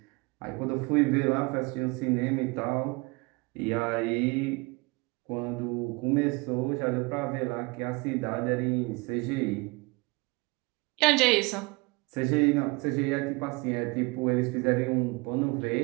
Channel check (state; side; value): quieter; left; 26.5 dB